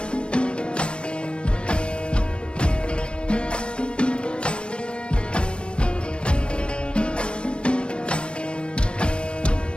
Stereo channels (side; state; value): right; late; 0.055 ms